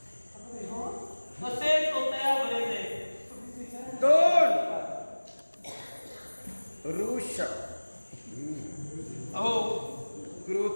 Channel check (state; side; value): inverted; both; correlation -1.00